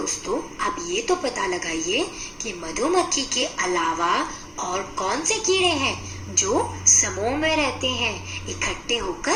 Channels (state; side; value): identical; both; correlation 1.00